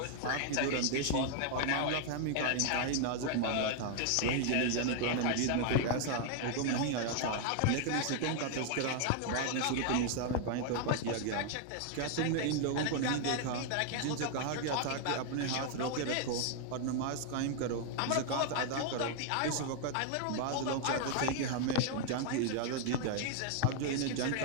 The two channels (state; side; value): different; both; correlation 0.00